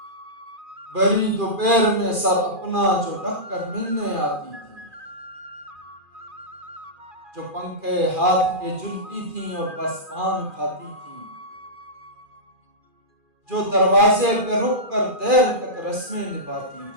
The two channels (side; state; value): left; late; 2.4 ms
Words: بڑی دوپہر میں سر اپنا جو ڈھک کر ملنے آتی تھیں، جو پنکھے ہاتھ کے جلتی تھیں اور بس پان کھاتی تھیں، جو دروازے پہ رک کر دیر تک رسمیں نبھاتی